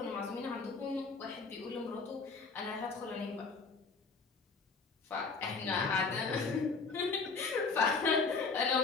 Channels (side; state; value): right; quieter; 4.5 dB